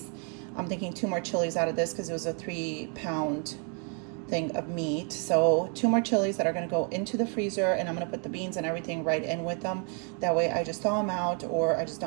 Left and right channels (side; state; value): left; quieter; 38.6 dB